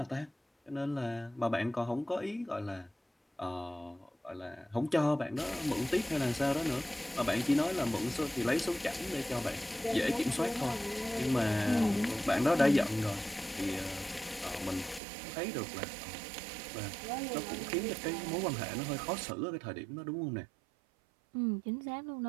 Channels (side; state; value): left; drops out; at 15.0 s